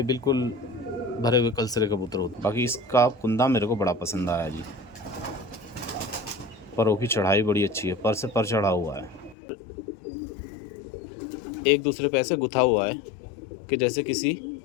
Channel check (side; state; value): right; drops out; at 9.3 s